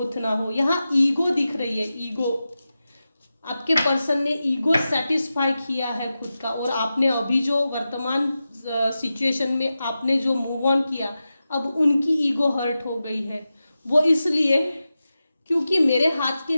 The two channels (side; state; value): both; inverted; correlation -0.93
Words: ना हो। यहाँ ईगो दिख रही है, ईगो। आपके पर्सन ने ईगो सेटिस्फाई किया है खुद का, और आपने अभी जो वर्तमान सिचुएशन में आपने जो मूव ऑन किया, अब उनकी ईगो हर्ट हो गई है। वो इसलिए क्योंकि मेरे हाथ के